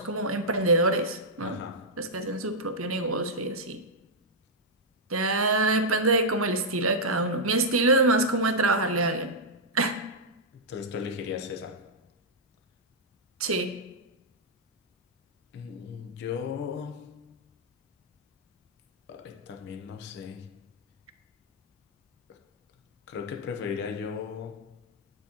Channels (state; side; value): normal; both; correlation -0.07